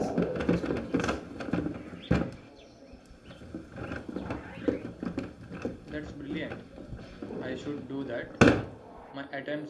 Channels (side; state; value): both; identical; correlation 1.00